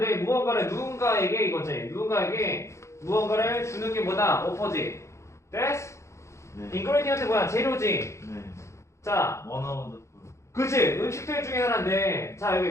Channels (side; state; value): right; late; 0.14 ms